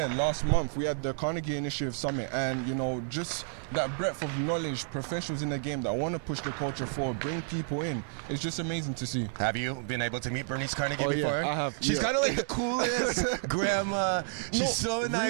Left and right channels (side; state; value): left; silent; 57 dB below the other